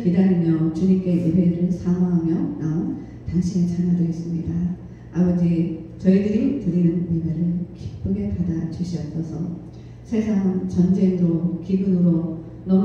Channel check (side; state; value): both; identical; correlation 1.00